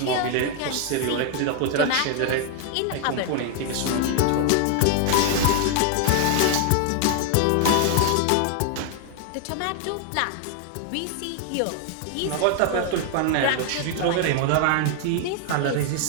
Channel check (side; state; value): both; different; correlation 0.00